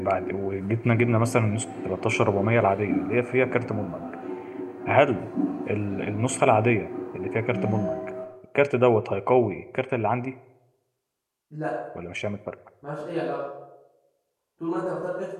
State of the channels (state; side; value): identical; both; correlation 1.00